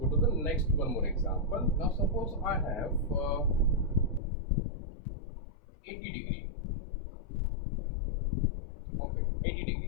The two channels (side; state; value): right; drops out; at 4.2 s